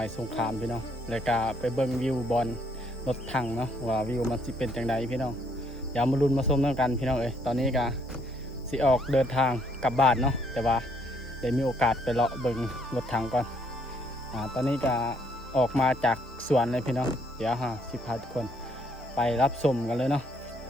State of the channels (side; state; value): both; normal; correlation 0.68